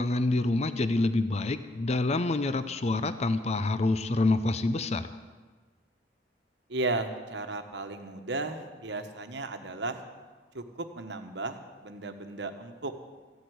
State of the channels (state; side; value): normal; both; correlation 0.62